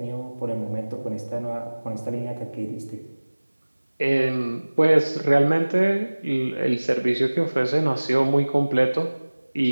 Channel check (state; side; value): inverted; both; correlation -1.00